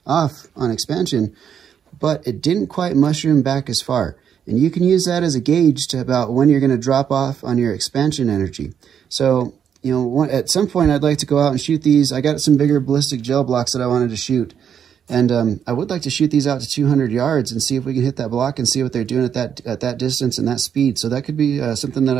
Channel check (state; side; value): quieter; left; 8.3 dB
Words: off on expansion, but it didn't quite mushroom back as far. And you can use that as a gauge to about when you're going to drop off on your expansion energy. So, at some point I'd like to go out and shoot these. I got some bigger ballistic gel blocks that I wanted to shoot. And I would like to shoot these out to 200 yards and see if we can hit that block and see what they're doing at that distance and that speed. So that could be something that